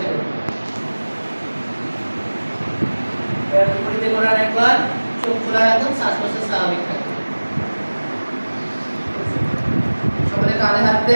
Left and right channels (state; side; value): inverted; both; correlation -1.00